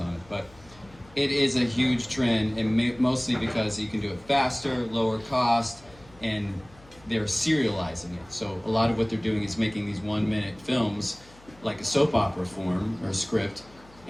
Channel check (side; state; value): left; noise; hum, 25 dB below the sound